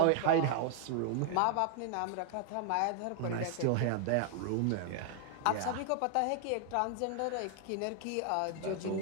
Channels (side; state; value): both; different; correlation 0.00